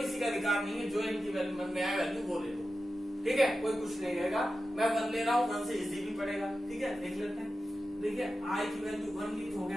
का अधिकार नहीं है, जो इनकी मन में आए वैल्यू वो ले लो, ठीक है, कोई कुछ नहीं रहेगा। मैं 1 ले रहा हूँ, 1 से इजी भी पड़ेगा, ठीक है, देख लेते हैं। देखिए i की वैल्यू 1 ली तो हो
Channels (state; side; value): normal; both; correlation 0.92